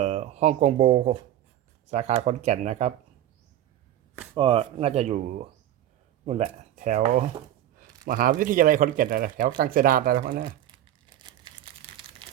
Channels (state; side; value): quieter; left; 12.2 dB